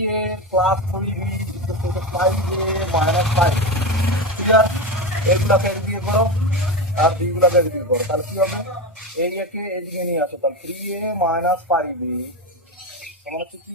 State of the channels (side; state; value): both; normal; correlation 0.18